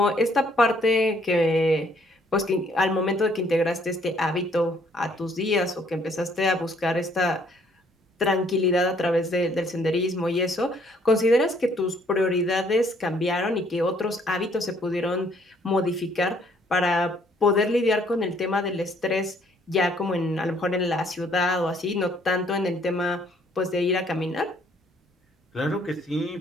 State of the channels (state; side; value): normal; both; correlation 0.64